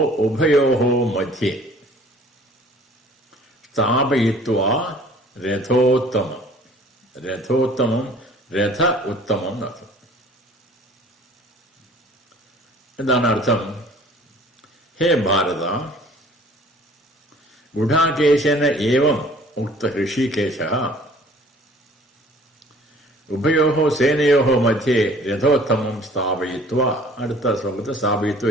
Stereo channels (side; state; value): both; normal; correlation 0.52